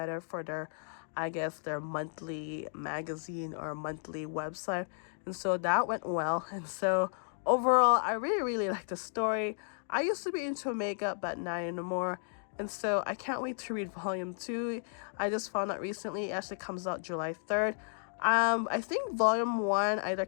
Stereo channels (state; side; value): silent; right; 55 dB below the other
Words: for their, I guess, their monthly magazine or monthly website. And so that went well. And so overall, I really like the story. I used to be into makeup, but not anymore. And so I can't wait to read volume 2. I just found out recently it actually comes out July 3rd. I think volume 1 either